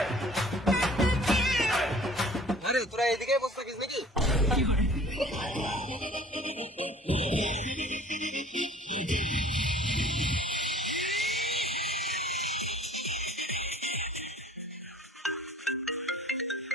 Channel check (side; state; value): both; normal; correlation 0.50